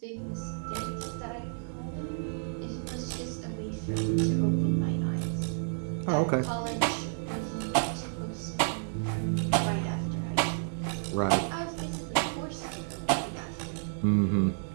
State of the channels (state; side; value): silent; left; 57 dB below the other